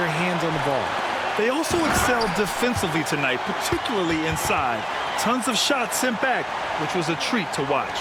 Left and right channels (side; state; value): both; identical; correlation 1.00